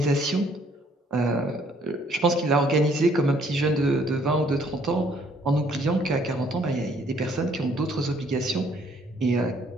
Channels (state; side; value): normal; both; correlation 0.64